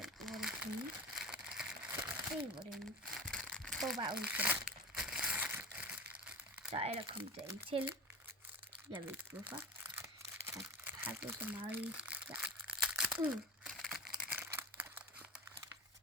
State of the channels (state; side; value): normal; both; correlation 0.28